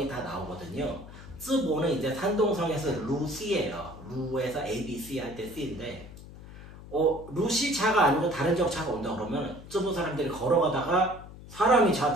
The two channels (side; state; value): left; noise; hum, 16 dB below the sound